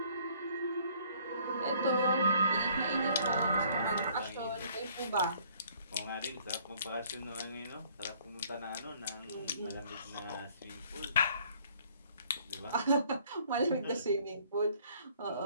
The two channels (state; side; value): inverted; both; correlation -0.59